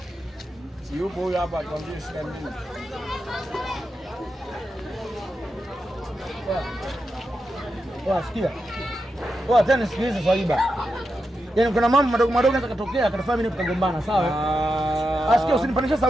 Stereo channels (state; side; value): normal; both; correlation 0.88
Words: Si yupo huyu hapa atuambie shida nini? Sikia. Tena sikiliza Swaiba. Yaani kuna mambo madogo madogo yanaweza kutokea akatafanya mimi tukagombana, sawa? Asikia usinipandishe